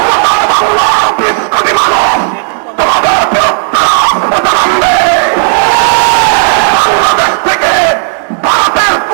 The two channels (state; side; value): silent; left; 73 dB below the other